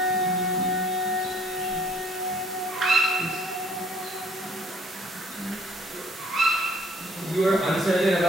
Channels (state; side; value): normal; both; correlation 0.60